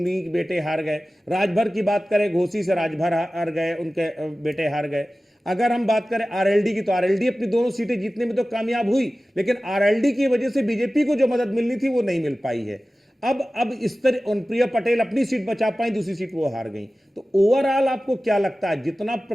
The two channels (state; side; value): normal; both; correlation 0.96